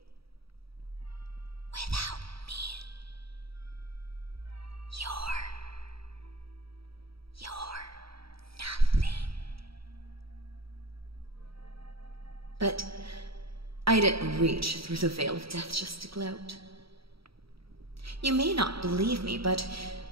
Without me, you're nothing. But I didn't reach through the veil of death just to gloat. You may not believe me, but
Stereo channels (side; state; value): left; late; 0.76 ms